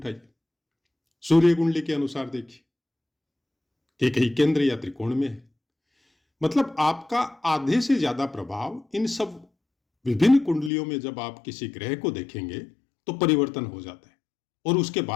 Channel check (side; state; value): right; drops out; at 10.7 s